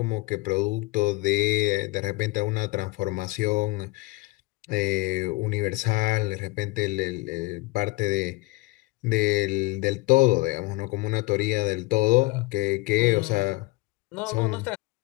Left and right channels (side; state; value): right; quieter; 22.3 dB